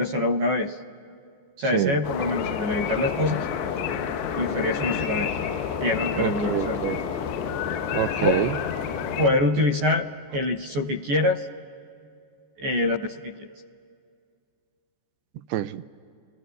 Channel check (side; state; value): left; late; 14 ms